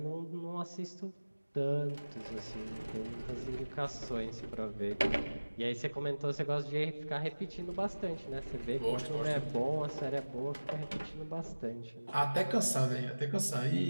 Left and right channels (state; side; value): inverted; both; correlation -1.00